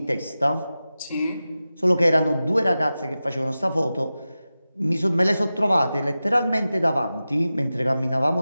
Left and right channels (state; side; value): inverted; both; correlation -0.94